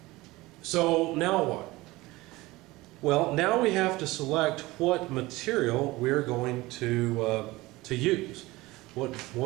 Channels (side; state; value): left; quieter; 20.1 dB